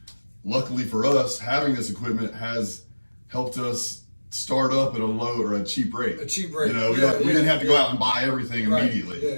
Luckily for us, having this equipment has helped us start up at a cheap rate. A cheap rate. We didn't have to go out and buy everything immediately. Yeah,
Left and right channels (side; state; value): both; inverted; correlation -1.00